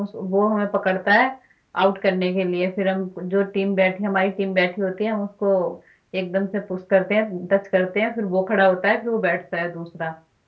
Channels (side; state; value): both; identical; correlation 1.00